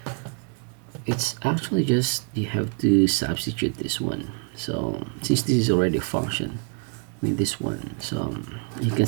it's actually just, you have to substitute this one. So since this is already a function, I mean this one, so you can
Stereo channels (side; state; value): left; quieter; 37.3 dB